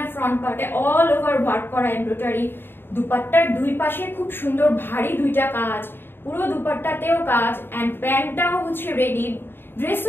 ফ্রন্ট পার্টে অল ওভার ওয়ার্ক করা এমব্রয়ডারি, দুপাট্টার দুই পাশে খুব সুন্দর ভারী দুইটা কাজ, পুরো দুপাট্টাতেও কাজ, এন্ড প্যান্টটাও হচ্ছে রেডি,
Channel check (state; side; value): late; right; 0.10 ms